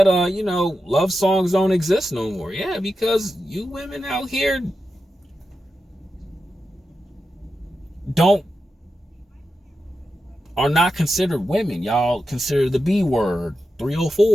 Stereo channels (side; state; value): both; normal; correlation 0.89